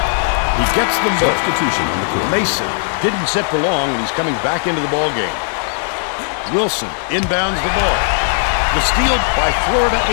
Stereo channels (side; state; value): right; silent; 62 dB below the other